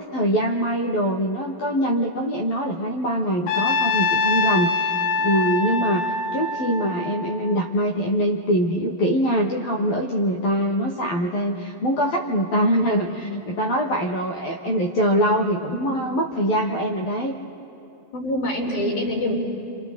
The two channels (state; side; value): late; right; 12 ms